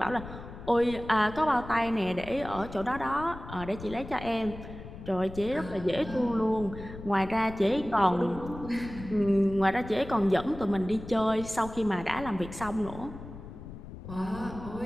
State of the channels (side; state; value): left; noise; rumble, 13 dB below the sound